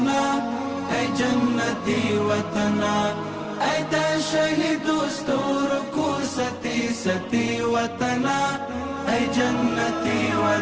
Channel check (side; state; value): both; identical; correlation 1.00